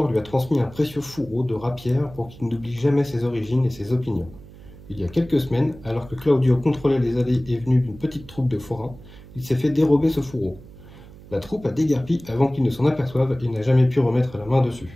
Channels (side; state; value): right; noise; hum, 19 dB below the sound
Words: lui a transmis un précieux fourreau de rapière pour qu'il n'oublie jamais ses origines et ses opinions. Il y a quelques semaines, alors que Claudio contrôlait les allées et venues d'une petite troupe de forains, il s'est fait dérober ce fourreau. La troupe a déguerpi avant qu'il ne s'en aperçoive et n'a jamais pu remettre la main